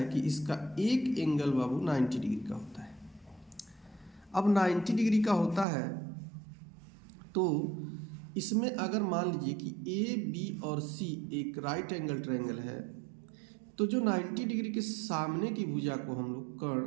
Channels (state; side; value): drops out; left; at 5.7 s